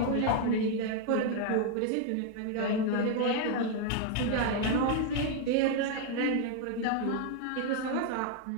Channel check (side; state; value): both; different; correlation 0.00